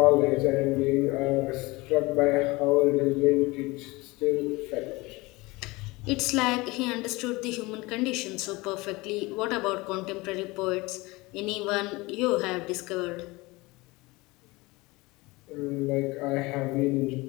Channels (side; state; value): right; quieter; 22.8 dB